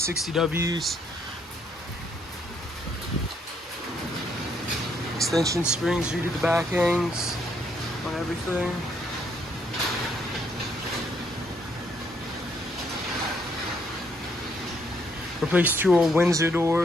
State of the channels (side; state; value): both; normal; correlation 0.71